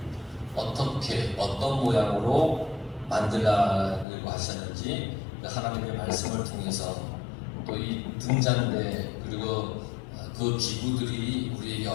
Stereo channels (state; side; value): drops out; right; at 4.0 s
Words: 어떻게 어떤 모양으로 만들려고 하셨는지 하나님의 말씀을 통해서 또 이 등잔대 그리고 그 기구들이 우리에게